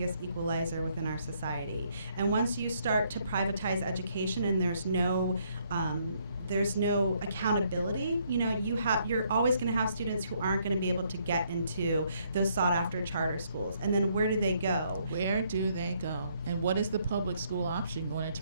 equalizer within our society. And once you start to privatize education and there's no accountability, you're always going to have students who aren't going to be able to get into those sought after charter schools. And then where do they go? Where do they go? And what is the public school option going to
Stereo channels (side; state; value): both; inverted; correlation -0.70